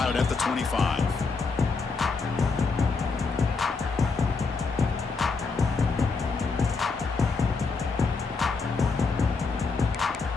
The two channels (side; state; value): right; quieter; 4.4 dB